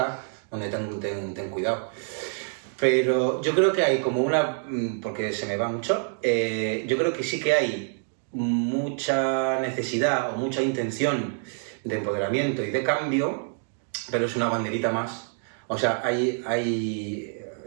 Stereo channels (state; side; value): silent; left; 61 dB below the other